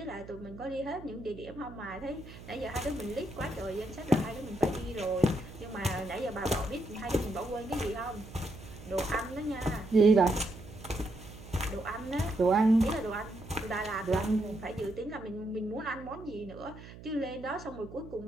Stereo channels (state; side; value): noise; right; hum, 16 dB below the sound